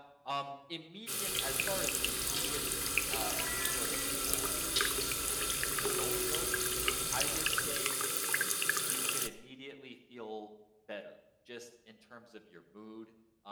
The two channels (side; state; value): both; identical; correlation 1.00